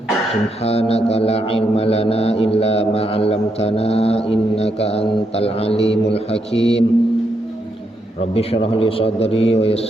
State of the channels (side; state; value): both; normal; correlation 0.80